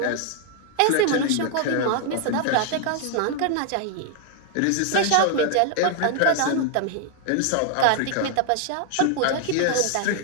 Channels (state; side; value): different; both; correlation 0.00